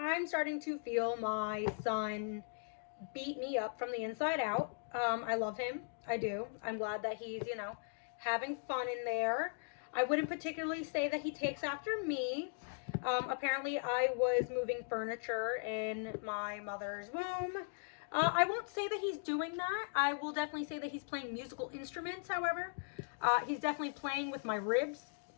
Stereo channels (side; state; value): right; silent; digital silence